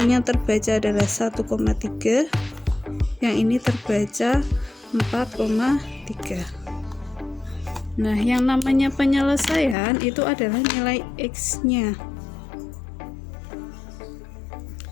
terbaca adalah 1,3, yang ini terbaca 4,3. Nah, yang namanya penyelesaian itu adalah nilai x-nya.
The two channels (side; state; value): right; drops out; at 9.8 s